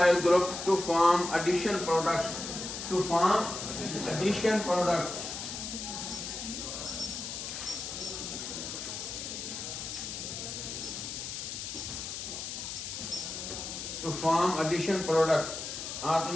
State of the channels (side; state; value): left; noise; hiss, 6 dB below the sound